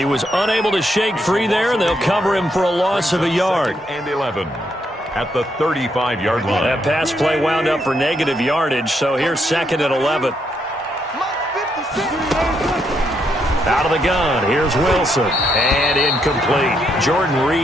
was unable to shake free there, and they'll cover him for a loss of a yard. And 11 at the 35-yard line. That pass play wound up for negative yardage, so here's 2nd and 11. Out of the gun, here's Wilson, and incomplete. Jordan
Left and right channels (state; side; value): normal; both; correlation 0.77